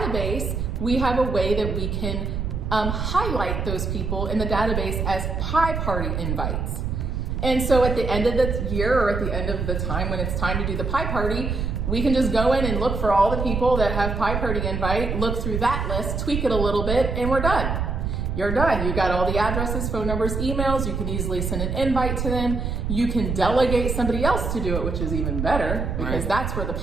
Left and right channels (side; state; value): right; noise; rumble, 2 dB below the sound